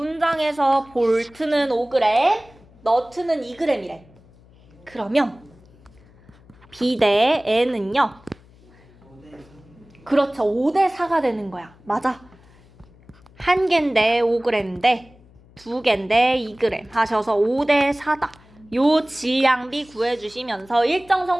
볼트는 5g, 너트는 2g이래. 그러면 B 대 N은요? 5대 3. 그렇죠. 5대 4가 되는 거야. 맞아. 한 개인데 5g인데 두 개인데 2g 하셔서 5대 4다. 요 질량비 구해주시면서 일정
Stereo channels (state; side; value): noise; left; hum, 27 dB below the sound